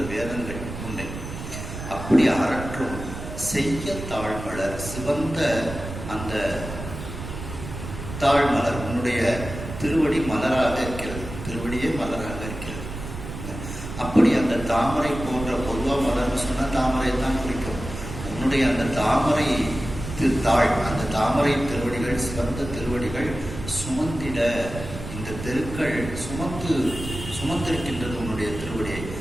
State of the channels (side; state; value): right; noise; rumble, 9 dB below the sound